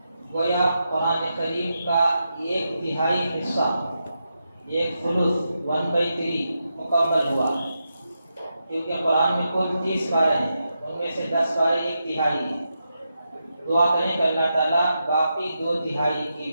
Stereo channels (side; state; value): both; inverted; correlation -0.87